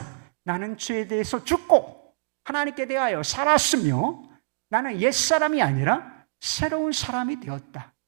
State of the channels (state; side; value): quieter; left; 39.0 dB